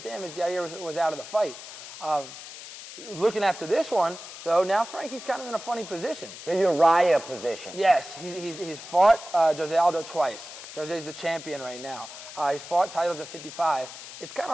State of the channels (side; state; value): left; noise; hiss, 13 dB below the sound